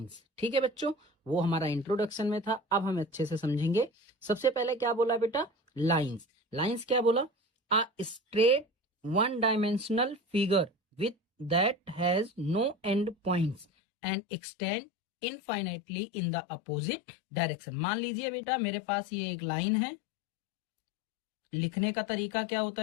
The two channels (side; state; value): right; drops out; at 13.7 s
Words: ठीक है बच्चों? वो हमारा इंट्रोडक्शन में था, अब हम अच्छे से समझेंगे। सबसे पहले क्या बोला बेटा? लाइंस। लाइंस क्या बोला? A straight one dimensional figure with that has no end points and extend infinitely in the opposite direction। मान लीजिए बेटा मेरे पास ये एक लाइन है, लिखने का तरीका क्या होता